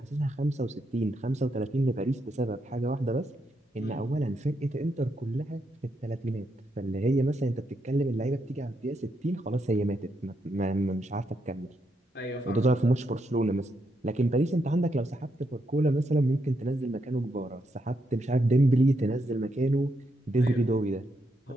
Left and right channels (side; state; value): both; normal; correlation 0.80